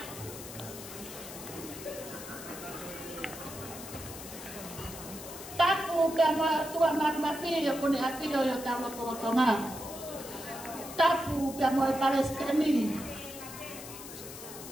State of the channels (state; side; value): noise; left; hiss, 12 dB below the sound